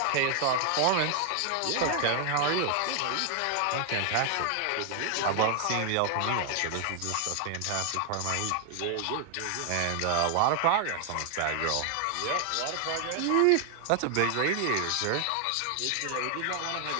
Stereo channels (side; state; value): both; different; correlation 0.00